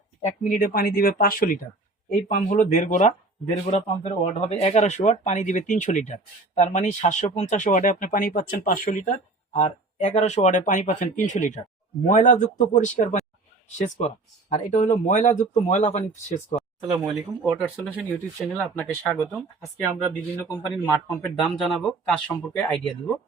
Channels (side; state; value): left; quieter; 3.2 dB